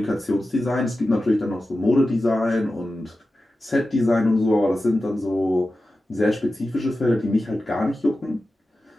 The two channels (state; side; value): normal; both; correlation 0.93